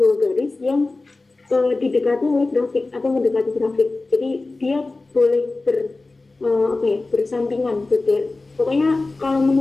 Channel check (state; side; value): quieter; right; 3.4 dB